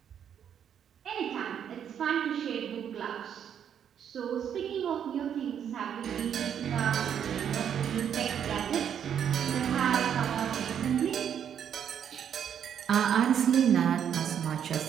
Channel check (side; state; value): left; quieter; 8.8 dB